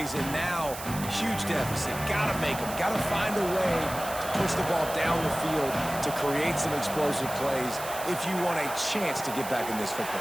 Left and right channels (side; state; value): right; noise; hiss, 11 dB below the sound